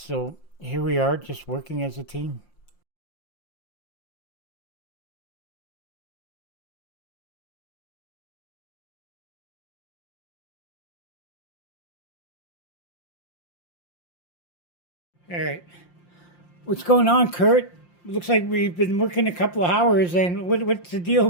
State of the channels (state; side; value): late; right; 5.7 ms